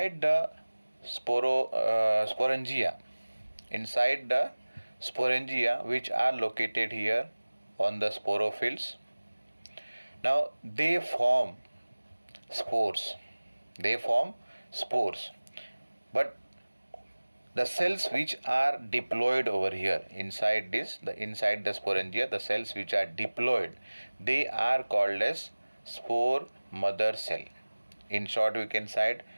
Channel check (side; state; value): both; inverted; correlation -1.00